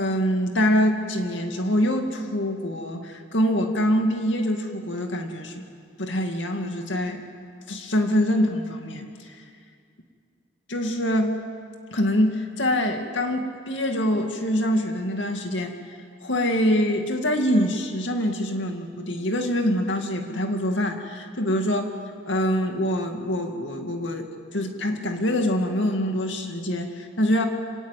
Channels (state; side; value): normal; both; correlation 0.56